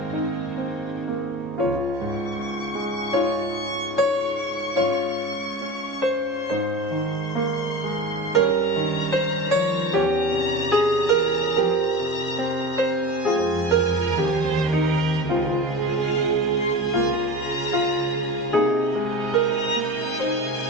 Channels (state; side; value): normal; both; correlation 0.30